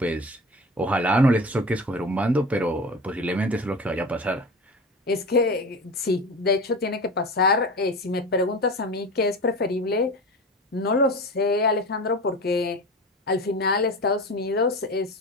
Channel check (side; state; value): both; normal; correlation 0.31